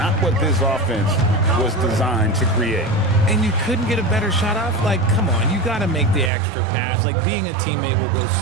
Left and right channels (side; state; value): left; drops out; at 6.3 s